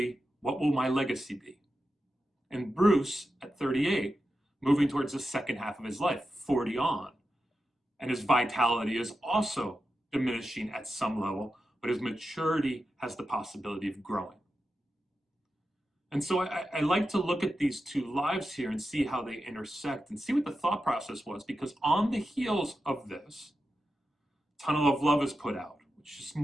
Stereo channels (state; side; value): normal; both; correlation 0.90